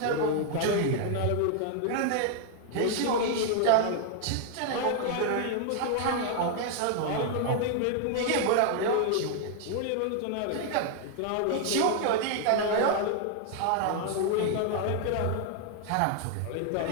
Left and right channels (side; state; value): both; different; correlation 0.00